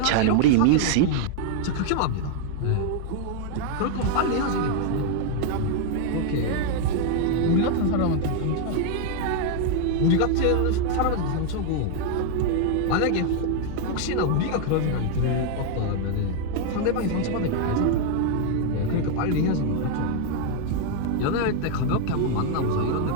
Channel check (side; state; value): both; different; correlation 0.00